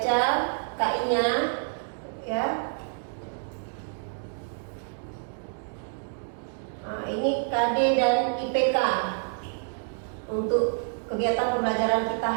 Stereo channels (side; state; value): left; silent; digital silence